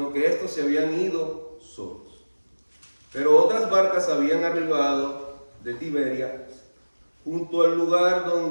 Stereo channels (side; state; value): both; inverted; correlation -1.00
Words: que estos se habían ido solos. Pero otras barcas habían arribado de Tiberias, junto al lugar